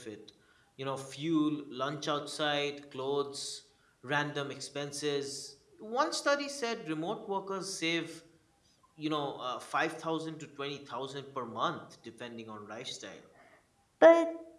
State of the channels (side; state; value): both; identical; correlation 1.00